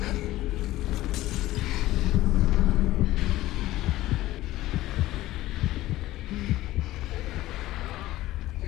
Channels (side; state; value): right; quieter; 16.2 dB